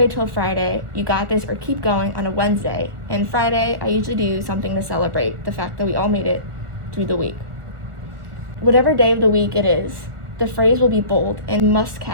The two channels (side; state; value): left; late; 1.4 ms